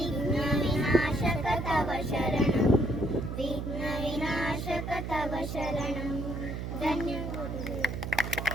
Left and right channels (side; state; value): right; noise; hum, 5 dB below the sound